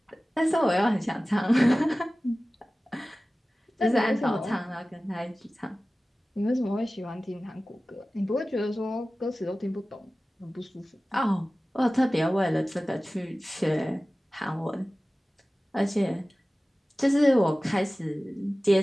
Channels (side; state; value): both; normal; correlation 0.97